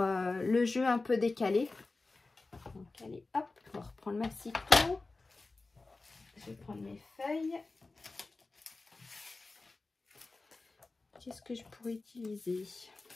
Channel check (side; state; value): right; quieter; 3.5 dB